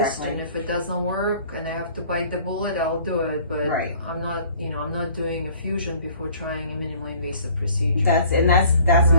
and if it doesn't work and I have to bite the bullet, I'll do it. But I'm not, you know, I'm not doing a fusion before trying a minimally invasive procedure. That's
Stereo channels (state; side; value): inverted; both; correlation -0.53